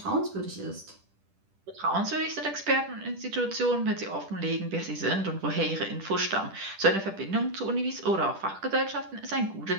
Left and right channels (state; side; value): late; left; 10 ms